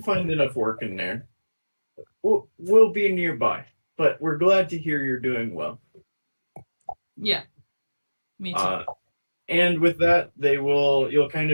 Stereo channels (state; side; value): inverted; both; correlation -1.00